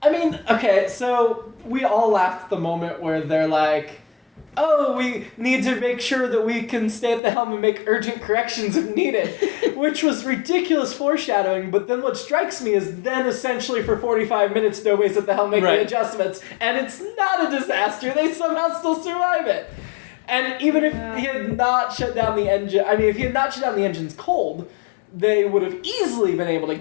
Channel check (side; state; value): right; drops out; at 7.2 s